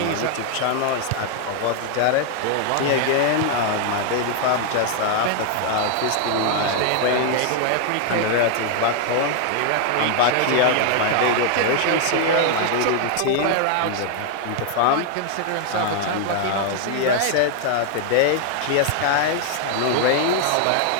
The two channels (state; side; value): different; both; correlation 0.00